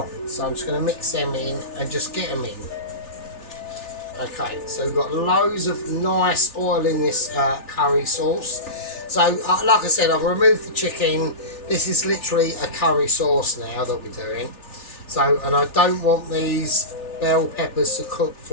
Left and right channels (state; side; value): late; right; 3.4 ms